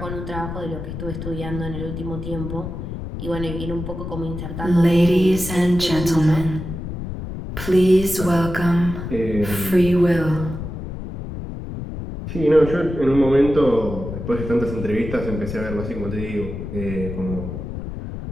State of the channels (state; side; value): noise; left; rumble, 7 dB below the sound